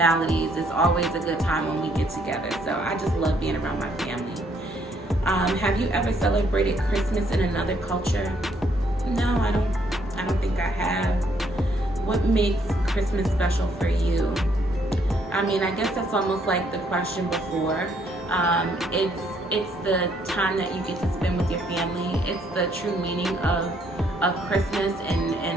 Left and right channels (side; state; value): both; normal; correlation 0.69